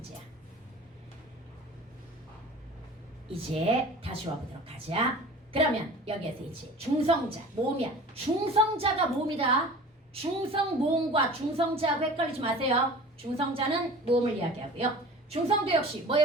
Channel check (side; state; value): both; normal; correlation 0.41